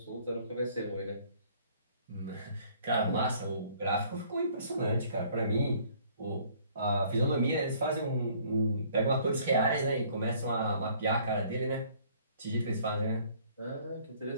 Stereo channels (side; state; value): both; inverted; correlation -0.58